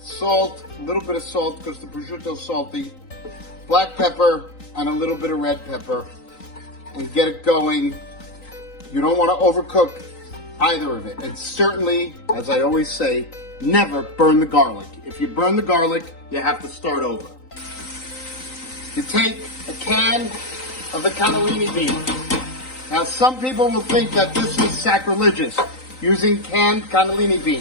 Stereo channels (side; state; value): right; late; 3.9 ms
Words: salt, a little bit of salt because the prosciutto is salty, black pepper, and a little bit of red pepper, and get it going. You don't want to overcook either of it. And certainly, as I always say, never burn the garlic. If you burn the garlic, you have to start over. You take a can of the cannellini beans. Now, some people will think that this is sacrilegious, using canned cannellini